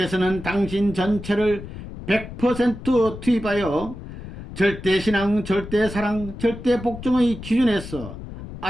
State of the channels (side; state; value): left; noise; rumble, 11 dB below the sound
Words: 당신 전체를 100% 투입하여 절대신앙, 절대사랑, 절대복종의 기준에서